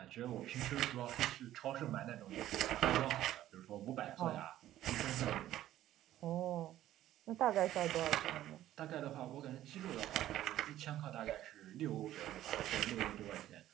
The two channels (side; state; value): left; quieter; 13.3 dB